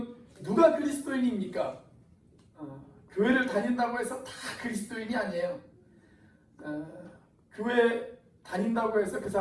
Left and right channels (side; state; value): both; identical; correlation 1.00